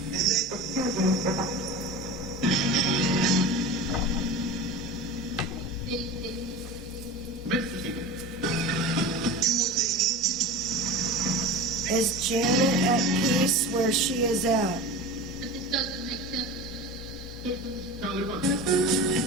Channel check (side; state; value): both; normal; correlation 0.31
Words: Is Janet at peace where she is at? But this doesn't make sense.